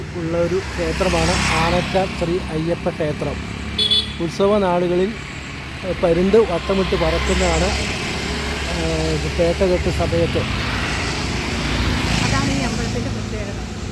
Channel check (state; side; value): identical; both; correlation 1.00